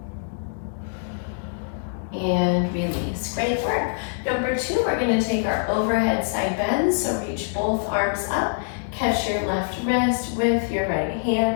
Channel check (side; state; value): right; silent; digital silence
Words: And release. Great work. Number 2, we're going to take our overhead side bends. So reach both arms up, catch your left wrist with your right